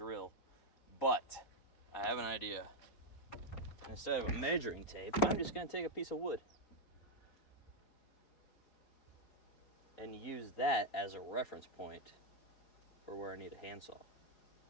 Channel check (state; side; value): late; right; 4.3 ms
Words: But I have an idea. Instead of a measuring tape, I'm just gonna take a piece of wood and use that as a reference point for where I need a handsaw.